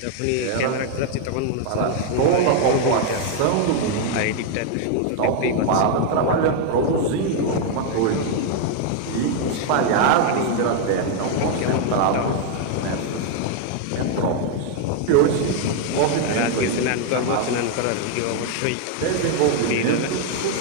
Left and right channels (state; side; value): different; both; correlation 0.00